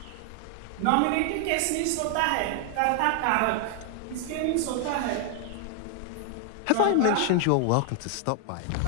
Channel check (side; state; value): both; different; correlation 0.00